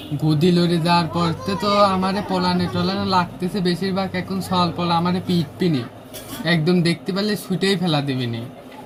গদি লড়ে যাওয়ার পর তো আমারে পলানে টলানে লাগতেছে বেশিরভাগ, এখন সল পলা আমারে পিটপিনি একদম দেখতে পেলে ছুটেই ফেলা দেবেনি।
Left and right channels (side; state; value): both; identical; correlation 1.00